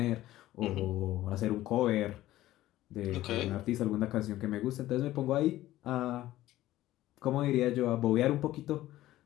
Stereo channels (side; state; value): right; quieter; 15.2 dB